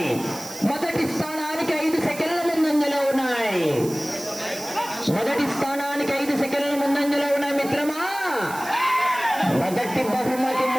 మొదటి స్థానానికి 5 సెకండ్ల ముందంజలో ఉన్నాయి. మొదటి స్థానానికి 5 సెకండ్ల ముందంజలో ఉన్నాయి. మిత్రమా, మొదటి బహుమతి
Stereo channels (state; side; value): noise; right; hiss, 14 dB below the sound